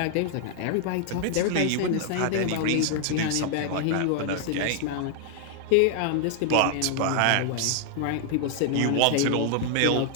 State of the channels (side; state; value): both; different; correlation 0.00